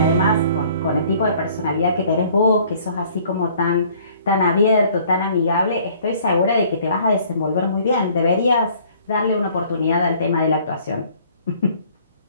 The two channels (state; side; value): inverted; both; correlation -0.57